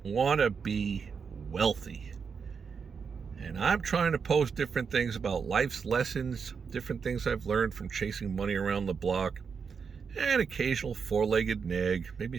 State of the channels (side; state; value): left; quieter; 6.0 dB